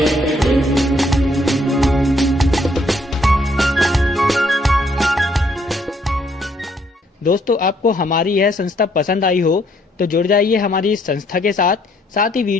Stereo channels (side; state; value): both; normal; correlation 0.68